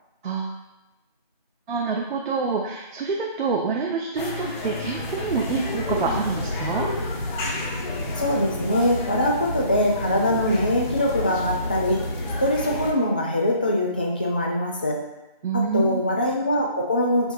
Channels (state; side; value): inverted; both; correlation -0.52